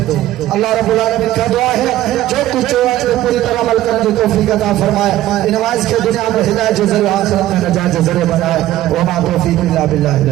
اللہ رب العالمین کا دعا ہے جو کچھ پوری طرح عمل کرنے کی توفیق عطا فرمائے نماز کے دنیا میں ہدایت ذریعہ آخرت میں نجات ذریعہ بنائے وما توفیق الا باللہ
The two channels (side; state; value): left; quieter; 14.4 dB